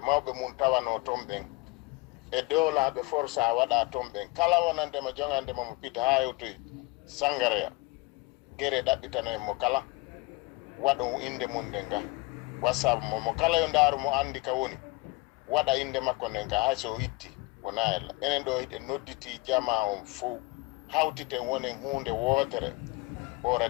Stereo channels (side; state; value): right; quieter; 24.1 dB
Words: mawɓe mum tawano ton ɓen e dowlaɓe forsa waɗa ton ɓen kala wonandema jongandema mo pita ha hewtoy sangareya guere ɗaɓɓitano en mo kala waɗo inde mum nden ga wassabu mo kala yo ndaaru mo andi ka woni waɗa inde makko nden ga hay so itti wona ella enen ɗo hiɗe nodditi jama on fof hawtiten wonen hunde wootere o